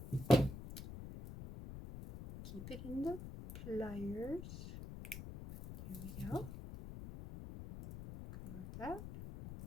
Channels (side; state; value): left; noise; rumble, 10 dB below the sound